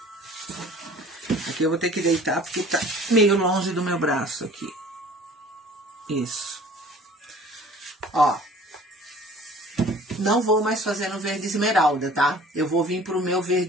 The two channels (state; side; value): normal; both; correlation 0.48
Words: Aqui eu vou ter que deitar porque tá meio longe do meu braço aqui. Isso. Ó. Não vou mais fazer no verde esmeralda, tá? Eu vou vir pro meu